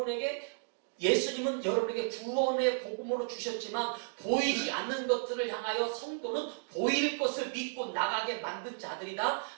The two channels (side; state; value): left; silent; digital silence